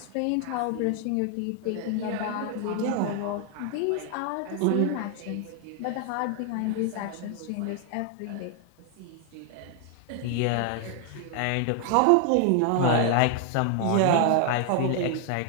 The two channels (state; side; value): different; both; correlation 0.00